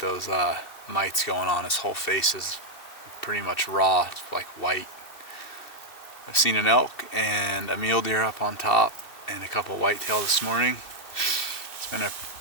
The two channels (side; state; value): right; late; 2.7 ms